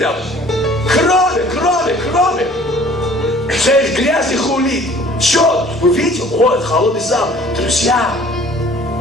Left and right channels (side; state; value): both; normal; correlation 0.52